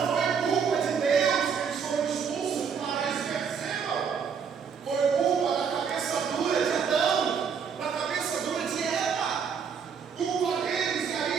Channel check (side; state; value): left; quieter; 6.6 dB